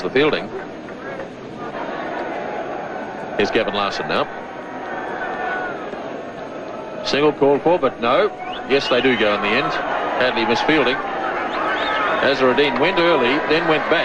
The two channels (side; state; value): both; identical; correlation 1.00